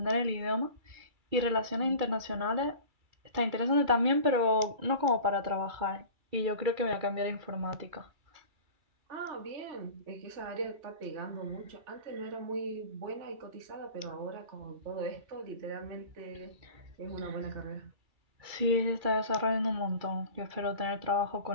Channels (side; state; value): left; late; 2.3 ms